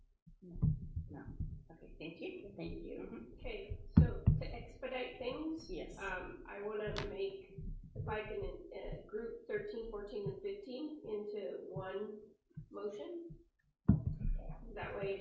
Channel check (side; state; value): both; identical; correlation 1.00